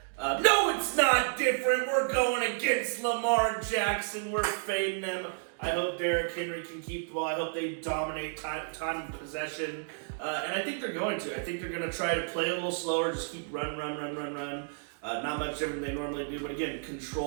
No, it's not different. We're going against Lamar Jackson. We're fading him. I hope Derrick Henry can keep the ball. I hope they dominate time and possession. And I think they're going to. I think they're going to try to play a little slower, just keep run. Not much different than they normally do, but again,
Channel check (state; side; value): silent; left; digital silence